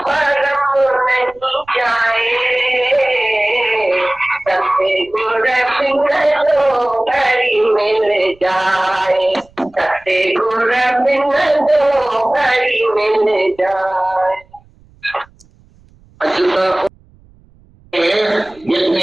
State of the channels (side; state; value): right; noise; rumble, 29 dB below the sound